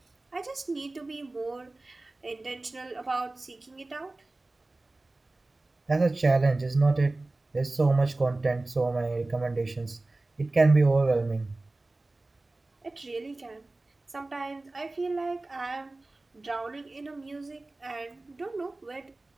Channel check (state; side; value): quieter; left; 3.0 dB